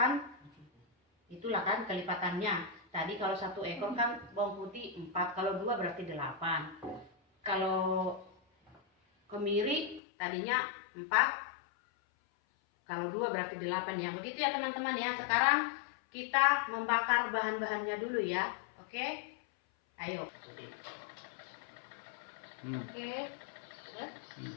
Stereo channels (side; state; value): right; drops out; at 10.0 s